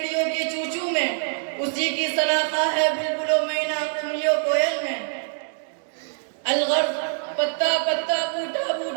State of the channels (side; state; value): left; silent; digital silence